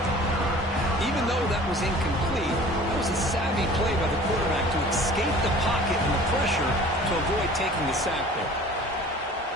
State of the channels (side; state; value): both; normal; correlation 0.46